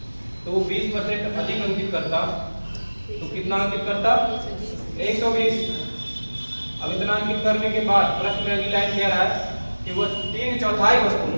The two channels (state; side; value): inverted; both; correlation -1.00